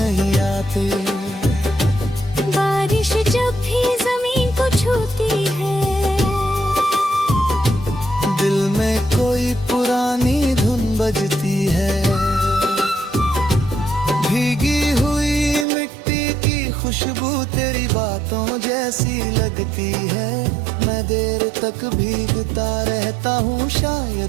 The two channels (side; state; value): left; drops out; at 15.7 s